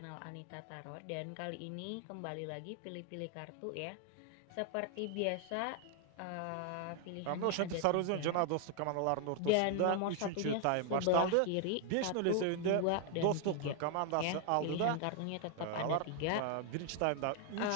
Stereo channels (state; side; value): different; both; correlation 0.00